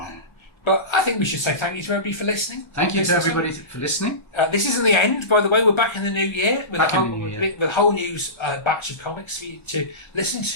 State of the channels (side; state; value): right; late; 1.3 ms